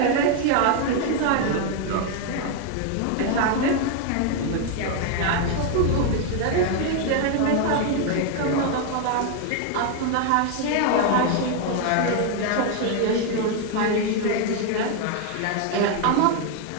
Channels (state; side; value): different; both; correlation 0.01